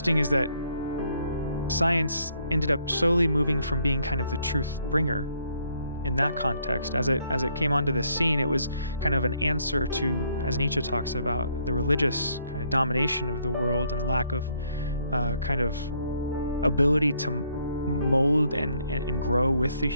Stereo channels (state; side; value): inverted; both; correlation -0.69